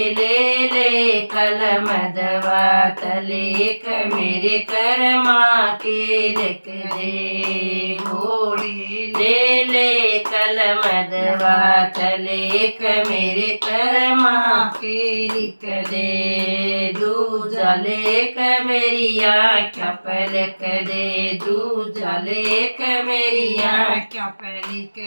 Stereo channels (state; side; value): inverted; both; correlation -1.00